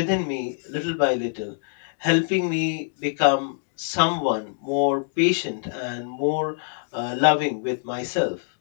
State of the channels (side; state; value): right; silent; digital silence